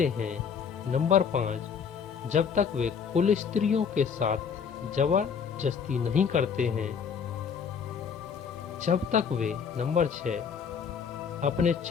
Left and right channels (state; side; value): quieter; right; 6.7 dB